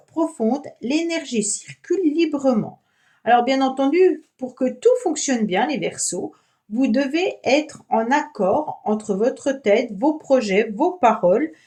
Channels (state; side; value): identical; both; correlation 1.00